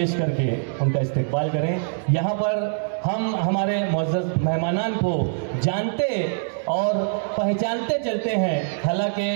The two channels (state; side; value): silent; left; digital silence